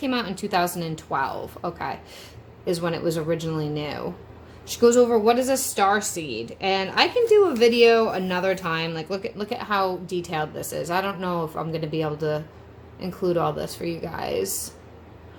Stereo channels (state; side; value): identical; both; correlation 1.00